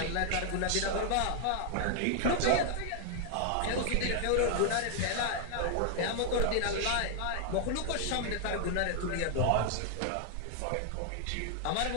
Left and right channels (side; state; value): both; different; correlation 0.00